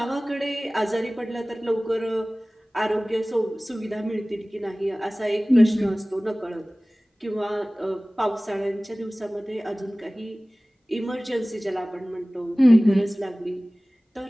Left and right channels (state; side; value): normal; both; correlation 0.98